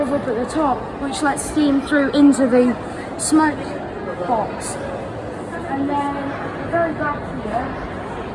up at the top, which lets steam through into the smoke box. And then at the very back here,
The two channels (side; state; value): both; identical; correlation 1.00